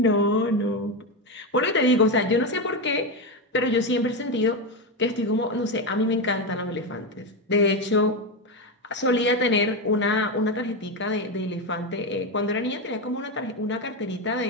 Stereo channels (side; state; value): both; normal; correlation 0.12